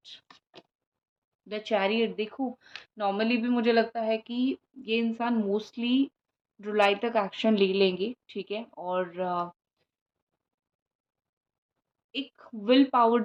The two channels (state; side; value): identical; both; correlation 1.00